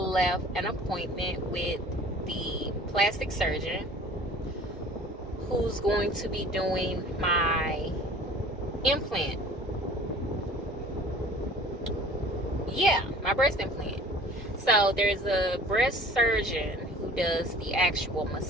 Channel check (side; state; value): both; normal; correlation 0.46